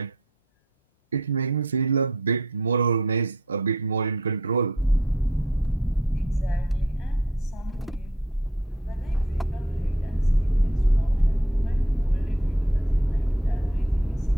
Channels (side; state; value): both; normal; correlation 0.61